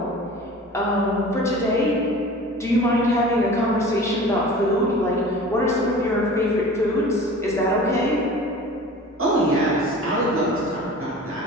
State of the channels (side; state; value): both; normal; correlation 0.40